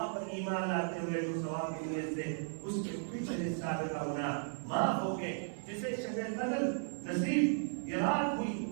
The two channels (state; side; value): silent; left; 54 dB below the other